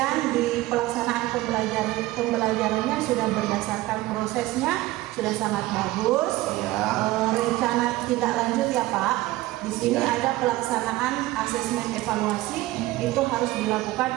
di pelaksanaan pembelajarannya sudah berdasarkan prosesnya sudah sangat bagus. Rencana tindak lanjut ya Pak. Di sini ada pelaksanaan asesmen evaluasi, itu harus dilakukan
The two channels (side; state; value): left; quieter; 17.9 dB